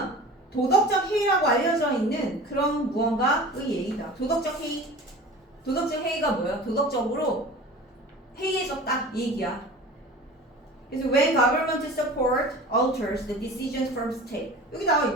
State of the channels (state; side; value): normal; both; correlation 0.38